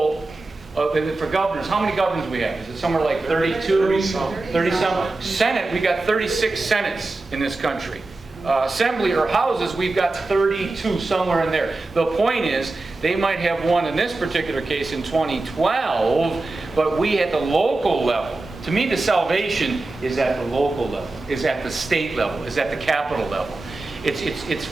for governors, how many governors we have? Is it somewhere like 32? 30-some? Senate, we got 36 Senates in this country. Assembly or houses, we've got 32, somewhere in there. The point is, they might have won in this particular case in 2012, but we at the local level. To me, the salvation is at the local level, is at the state level, is at the capital level. It's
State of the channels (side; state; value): left; quieter; 3.2 dB